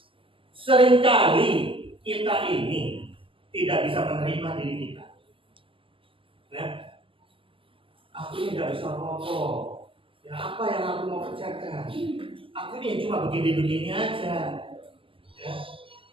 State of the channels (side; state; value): left; late; 0.25 ms